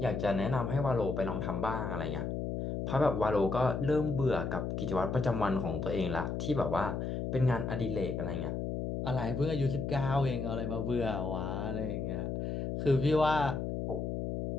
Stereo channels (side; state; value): left; noise; hum, 3 dB below the sound